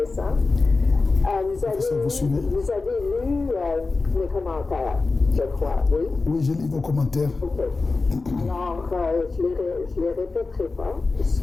Vous avez lu mes commentaires, je crois, oui? Oui, j'ai lu vos commentaires. OK. Alors, je les répéterai pas. Ce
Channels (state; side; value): quieter; right; 3.8 dB